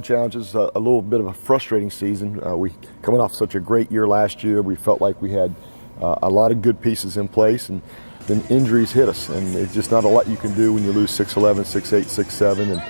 challenges. A little bit of a frustrating season. We coming off such a great year last year. We felt like we had a lot of good pieces in place, and then injuries hit us. And it's just not a lot you can do when you lose 6'11", 6'8", 6'7", and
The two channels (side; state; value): both; inverted; correlation -1.00